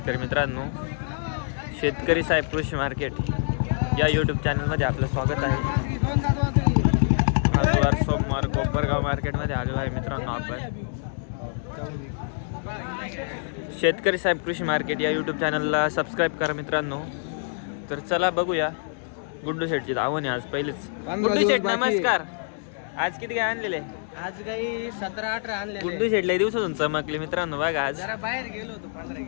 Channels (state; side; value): silent; right; 61 dB below the other